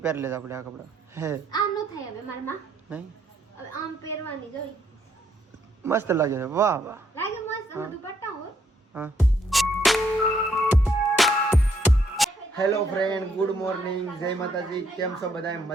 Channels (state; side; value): normal; both; correlation 0.70